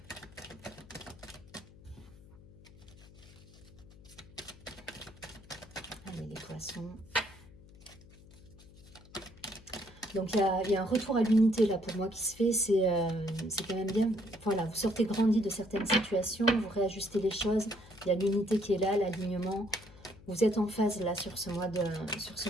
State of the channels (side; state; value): left; noise; hum, 21 dB below the sound